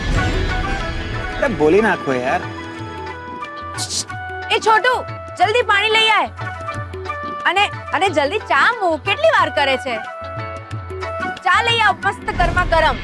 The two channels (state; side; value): identical; both; correlation 1.00